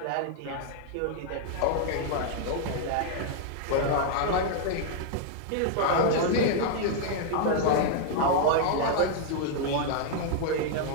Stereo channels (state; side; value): different; both; correlation -0.01